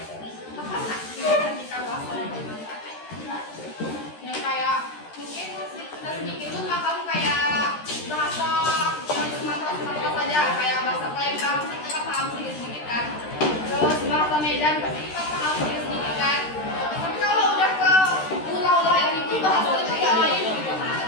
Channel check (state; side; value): late; right; 13 ms